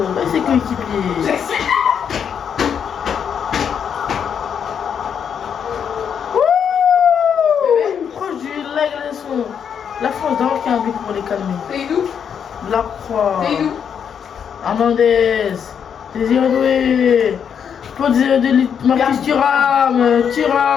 Et ses coéquipiers. Proche du leg, la France d'abord qui a un but pour les calmer. C'est d'où? La Croix. C'est d'où? Hernandez. Désiré Doué. Pour Désiré Doué. Marcus Thuram.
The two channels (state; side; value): quieter; right; 7.7 dB